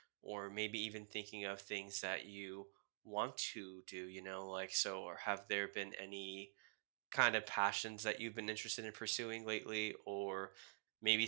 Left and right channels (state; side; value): silent; left; digital silence